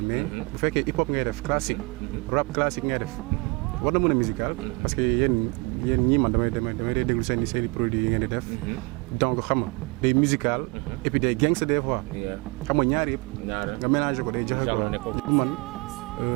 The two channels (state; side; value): quieter; left; 27.8 dB